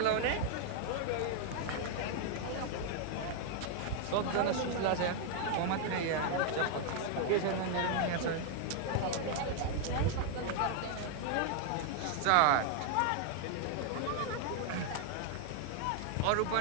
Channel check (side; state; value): both; different; correlation 0.00